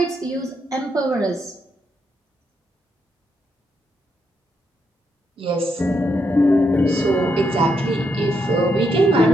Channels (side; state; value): both; normal; correlation 0.79